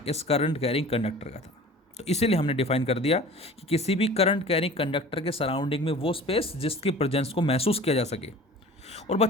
इस करंट कैरिंग कंडक्टर का था। तो इसीलिए हमने डिफाइन कर दिया कि किसी भी करंट कैरिंग कंडक्टर के सराउंडिंग में वो स्पेस जिसकी प्रेजेंस को महसूस किया जा सके। और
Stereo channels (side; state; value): both; normal; correlation 0.42